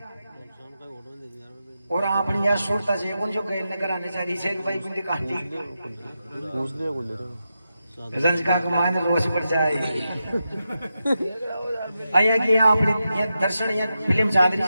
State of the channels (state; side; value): inverted; both; correlation -0.88